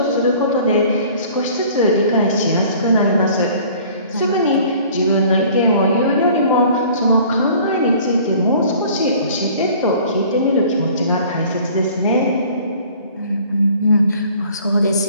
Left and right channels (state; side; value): inverted; both; correlation -0.51